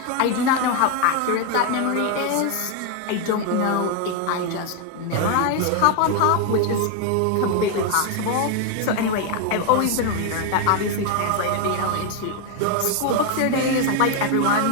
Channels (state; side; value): different; both; correlation 0.01